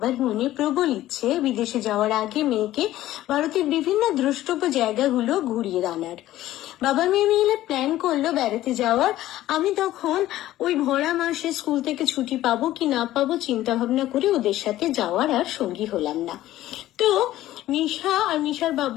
মনে প্রবল ইচ্ছে বিদেশে যাওয়ার আগে মেয়েকে ভারতের বিভিন্ন দ্রষ্টব্য জায়গাগুলো ঘুরিয়ে আনার। বাবা মেয়ে মিলে প্ল্যান করলো বেড়াতে যাওয়ার। আমি তখন ওই ভরা মাসে স্কুল থেকে ছুটি পাবো কি না পাবো চিন্তা ভাবনা করে ওদের সাথে যাওয়ার আর সঙ্গী হলাম না। তো মিশা আর মিশার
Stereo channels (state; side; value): quieter; right; 14.5 dB